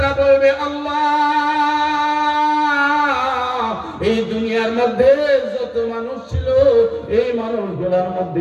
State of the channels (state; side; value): identical; both; correlation 1.00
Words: বলবে, আল্লাহ, এই দুনিয়ার মধ্যে যত মানুষ ছিল, এই মানুষগুলোর